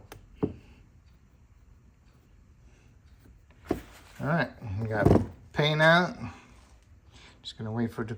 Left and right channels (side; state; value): both; identical; correlation 1.00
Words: All right, we got paint on it. Just gonna wait for the